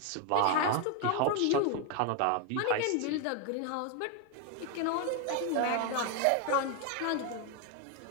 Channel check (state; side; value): different; both; correlation 0.01